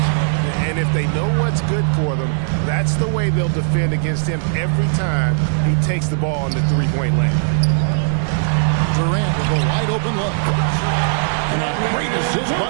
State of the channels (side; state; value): left; silent; 64 dB below the other